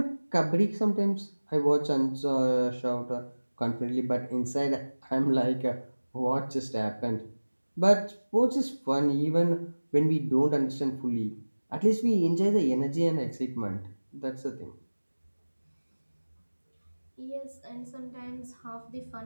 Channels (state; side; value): inverted; both; correlation -1.00